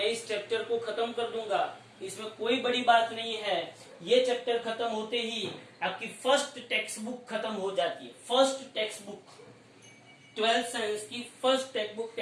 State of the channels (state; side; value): identical; both; correlation 1.00